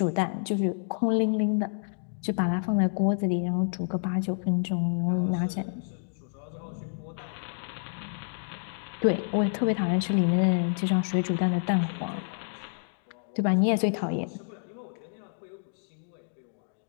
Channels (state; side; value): silent; right; digital silence